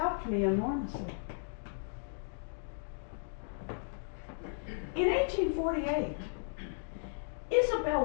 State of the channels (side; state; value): right; silent; digital silence